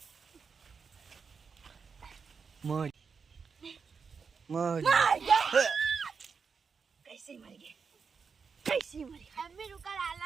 मौज मौज कैसे मर गए? कैसे मर गए? मम्मी रुका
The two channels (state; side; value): quieter; left; 5.6 dB